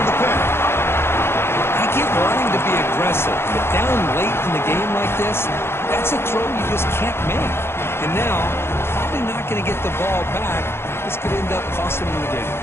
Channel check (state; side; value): late; right; 0.12 ms